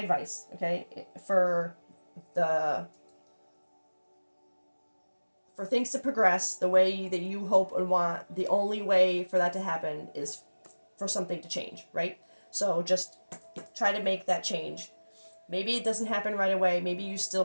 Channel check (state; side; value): inverted; both; correlation -1.00